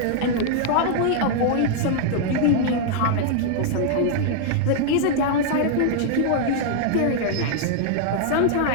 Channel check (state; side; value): different; both; correlation -0.01